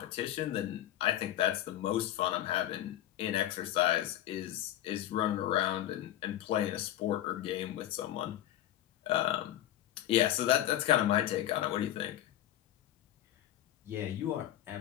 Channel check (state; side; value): quieter; right; 12.9 dB